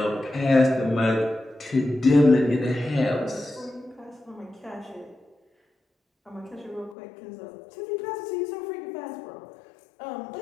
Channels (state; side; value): drops out; right; at 7.0 s